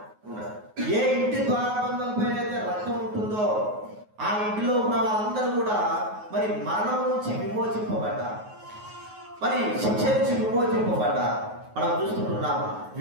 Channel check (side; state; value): left; late; 9.4 ms